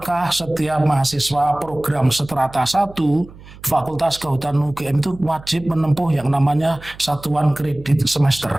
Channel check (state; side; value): noise; right; hum, 20 dB below the sound